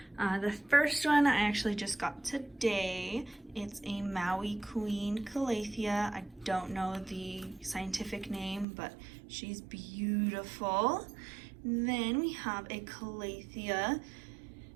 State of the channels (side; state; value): left; drops out; at 8.7 s